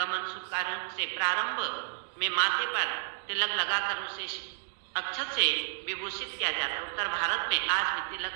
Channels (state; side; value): silent; left; digital silence